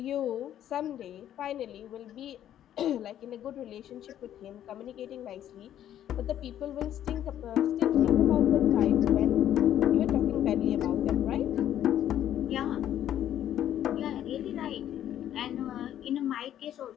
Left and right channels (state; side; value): quieter; right; 11.1 dB